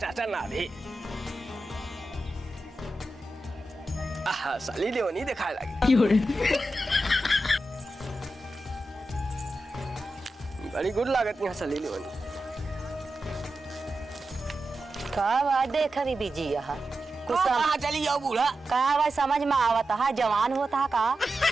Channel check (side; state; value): both; normal; correlation 0.91